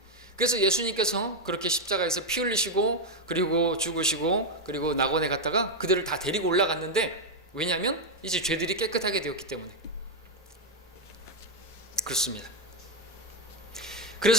그래서 예수님께서 그렇게 십자가에서 피 흘리시고 그리고 죽으시고 그리고 낙원에 갔다가 그들을 다 데리고 올라갔는데, 왜냐하면 이제 죄들이 깨끗하게 되었기 때문에 그렇습니다.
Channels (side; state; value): both; normal; correlation 0.04